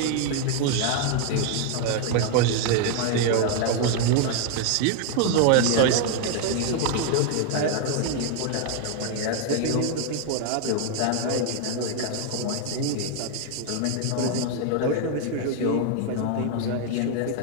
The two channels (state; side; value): different; both; correlation 0.00